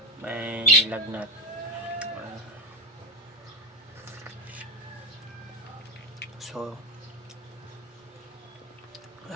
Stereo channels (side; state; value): both; normal; correlation 0.16